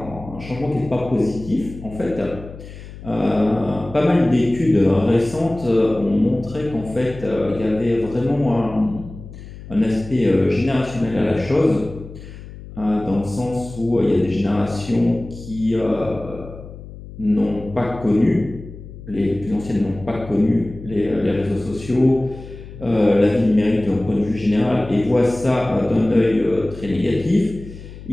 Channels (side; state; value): left; noise; hum, 15 dB below the sound